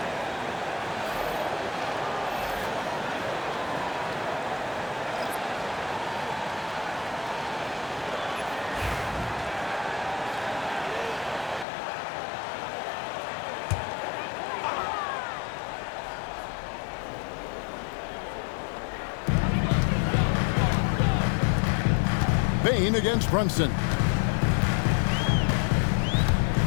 Bane against Brunson.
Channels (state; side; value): drops out; right; at 11.7 s